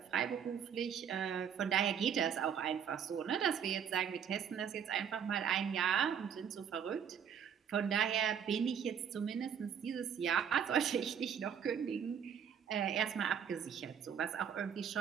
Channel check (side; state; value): left; quieter; 7.9 dB